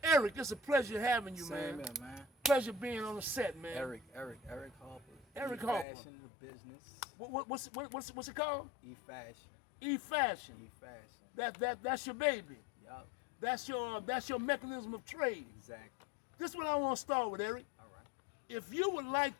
Eric, it's a pleasure having you, Same man. here, man. Pleasure being on the set, man. Eric Harper. Eric Harper. E-Fashion, the business. What's it called? E-Fashion. E-Fashion. E-Fashion. That's your baby. Yup. That's your mechanism of trade. Exactly. This is what I want to start with, Eric. All right. If you would like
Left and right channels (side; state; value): right; drops out; at 5.9 s